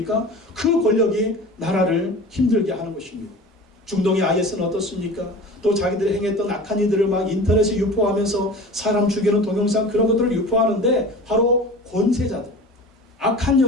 그 권력이 나라를 힘들게 하는 것입니다. 중동의 IS는 어떻습니까? 또 자기들이 행했던 악한 이들을 막 인터넷에 유포하면서 사람 죽이는 동영상 그런 것들을 유포하는데 바로 권세자들, 악한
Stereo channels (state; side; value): normal; both; correlation 0.37